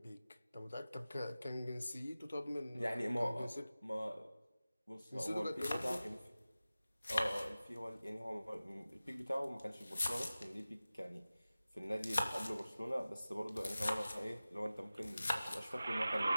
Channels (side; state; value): both; inverted; correlation -0.96